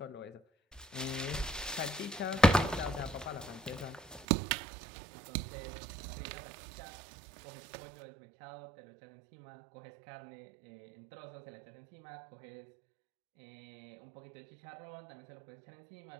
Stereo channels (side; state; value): left; drops out; at 4.2 s